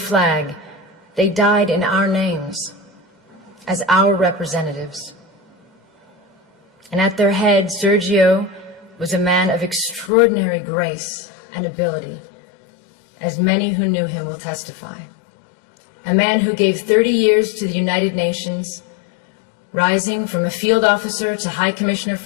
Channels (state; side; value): drops out; right; at 10.1 s